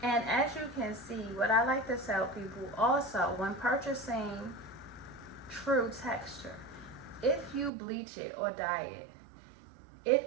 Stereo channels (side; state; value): left; drops out; at 7.7 s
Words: And as you can see, what I like to tell people also, when purchasing True texture, if you bleach it or dye it,